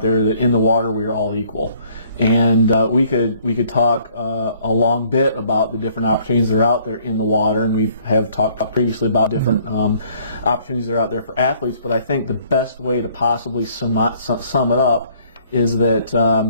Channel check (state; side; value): inverted; both; correlation -0.61